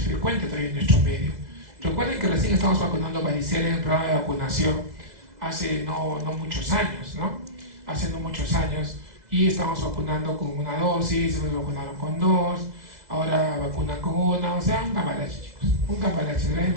frecuente todavía en nuestro medio. Recuerden que recién estamos vacunando varicela en el programa de vacunación hace no muchos años, ¿no? Hace no muchos años, y estamos vacunando con una dosis, nos vacunaron con 2, ahora vacunan con 1, o sea, un cambalache, chicos, un cambalache.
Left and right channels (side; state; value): left; late; 2.0 ms